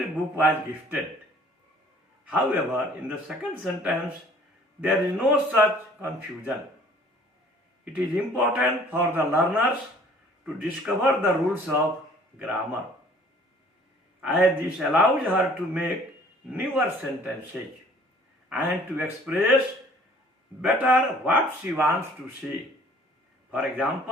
book was gifted. However, in the second sentence, there is no such confusion. It is important for the learners to discover the rules of grammar, as this allows her to make newer sentences and to express better what she wants to say. For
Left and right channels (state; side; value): normal; both; correlation 0.54